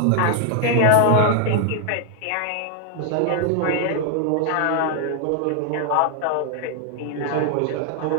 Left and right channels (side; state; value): both; different; correlation 0.00